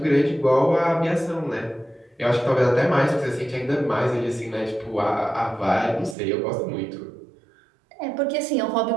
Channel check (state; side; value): drops out; left; at 6.2 s